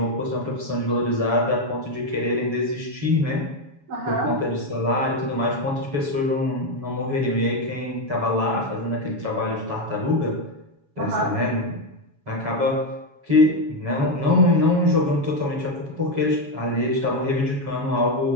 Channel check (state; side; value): late; left; 7.1 ms